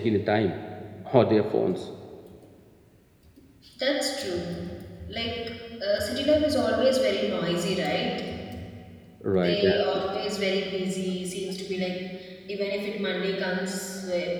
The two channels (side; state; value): both; identical; correlation 1.00